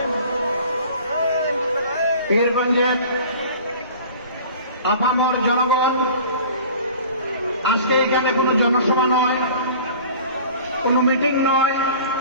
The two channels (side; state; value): both; inverted; correlation -0.44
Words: পীরগঞ্জের আপামর জনগণ, আজকে এখানে কোনো জনসভা নয়, কোনো মিটিং নয়,